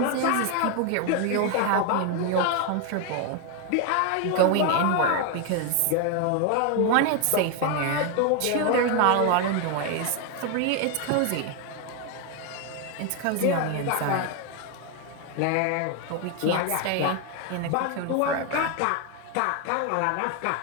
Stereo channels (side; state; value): both; different; correlation 0.01